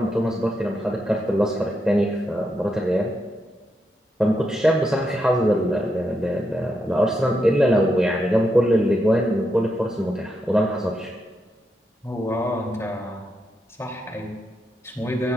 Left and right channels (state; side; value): normal; both; correlation 0.83